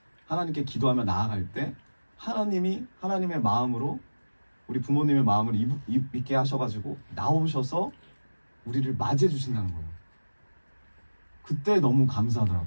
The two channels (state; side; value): inverted; both; correlation -1.00